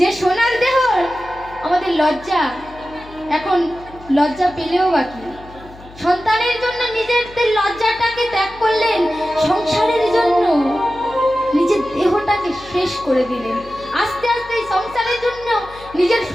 সোনার দেহ আমাদের লজ্জা, এখন লজ্জা পেলেও বাকি, সন্তানের জন্য নিজের লজ্জাটাকে ত্যাগ করলেন, সংসারের জন্য নিজের দেহটাকে শেষ করে দিলেন। আস্তে আস্তে সংসারের জন্য নিজের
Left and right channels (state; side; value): noise; left; hum, 20 dB below the sound